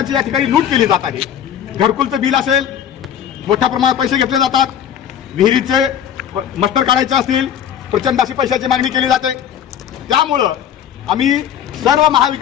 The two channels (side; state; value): right; quieter; 9.4 dB